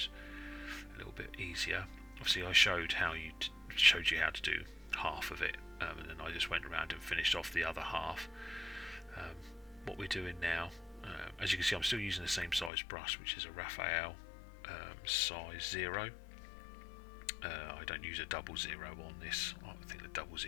a little bit easier. Obviously I showed you how to do half of it, and then I just went around and finished off the other half. What we're doing now, as you can see, I'm still using the same size brush, which is a Raphael size 0. I don't use a 00 on this. I think the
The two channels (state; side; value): drops out; right; at 12.7 s